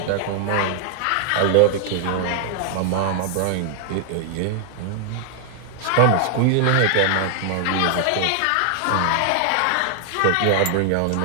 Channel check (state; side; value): different; both; correlation 0.00